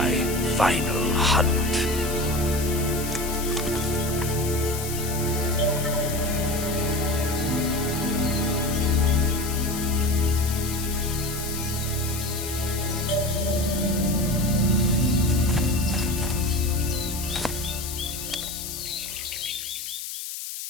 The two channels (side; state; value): left; noise; hiss, 7 dB below the sound